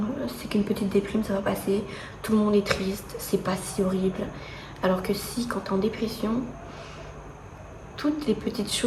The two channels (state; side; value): identical; both; correlation 1.00